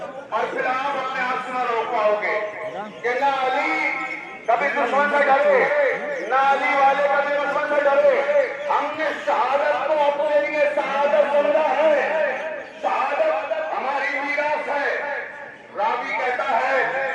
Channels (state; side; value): identical; both; correlation 1.00